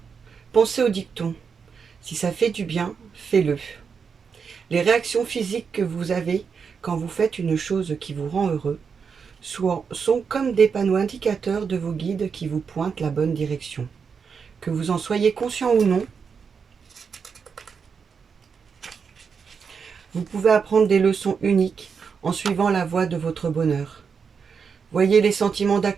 pensez au dicton. Si ça fait du bien, fais-le. Les réactions physiques que vous avez quand vous faites une chose qui vous rend heureux sont comme des panneaux indicateurs de vos guides qui vous pointent la bonne direction. Que vous en soyez conscient ou non, vous pouvez apprendre des leçons uniques en suivant la voie de votre bonheur. Voyez les sentiments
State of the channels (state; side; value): quieter; left; 6.0 dB